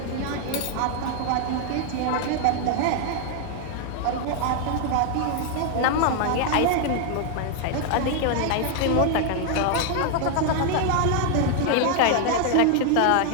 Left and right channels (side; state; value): both; different; correlation 0.00